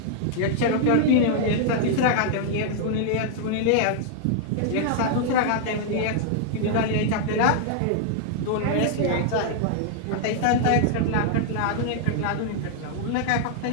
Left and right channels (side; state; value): both; different; correlation -0.01